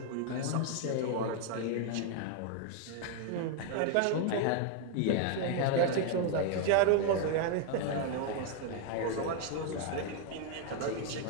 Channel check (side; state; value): both; different; correlation 0.00